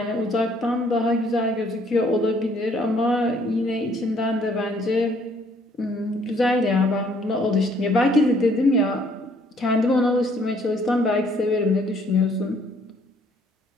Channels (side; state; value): both; normal; correlation 0.63